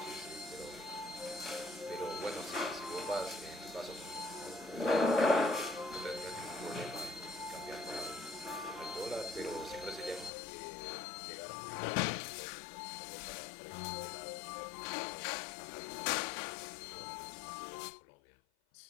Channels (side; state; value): right; drops out; at 10.3 s